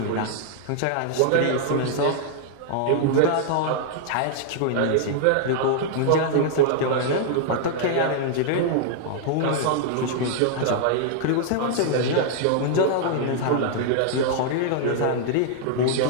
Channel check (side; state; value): both; different; correlation -0.01